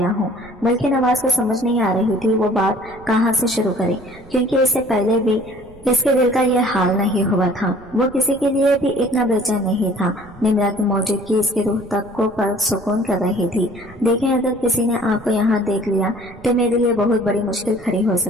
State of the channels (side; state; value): right; noise; rumble, 23 dB below the sound